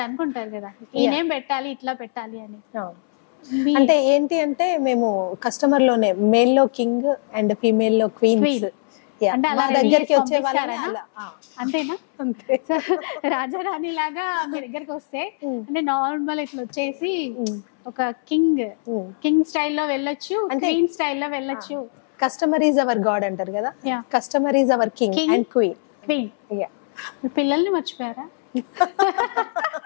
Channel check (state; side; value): silent; right; 63 dB below the other